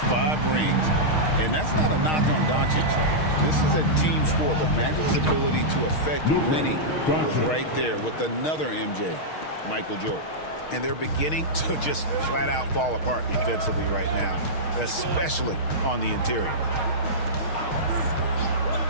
5 rings, and that's not a knock on Doncic. This is a team sport, but Magic's ability to affect winning was right there with another MJ, Michael Jordan. And they're beginning to just flat out fall apart defensively right now, especially on the interior.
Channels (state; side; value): late; right; 6.4 ms